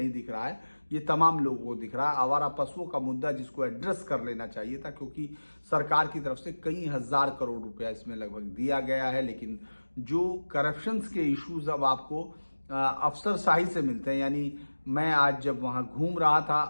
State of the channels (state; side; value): inverted; both; correlation -1.00